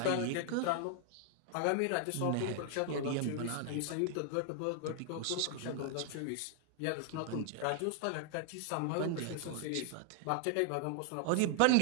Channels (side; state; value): both; different; correlation 0.00